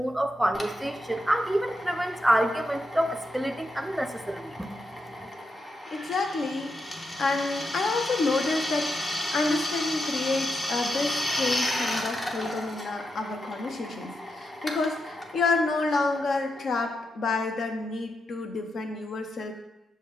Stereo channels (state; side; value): normal; both; correlation 0.85